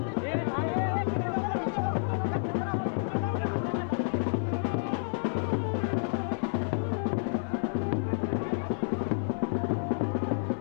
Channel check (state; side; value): silent; right; 58 dB below the other